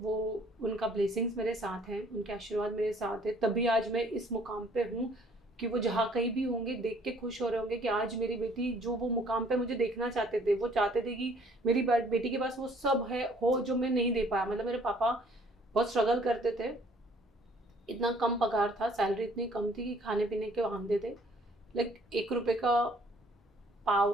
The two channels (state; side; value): normal; both; correlation 0.59